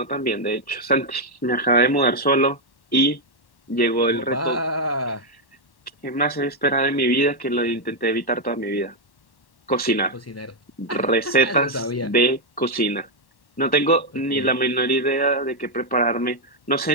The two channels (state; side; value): late; right; 1.1 ms